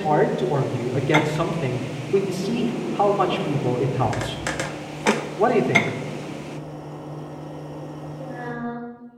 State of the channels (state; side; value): identical; both; correlation 1.00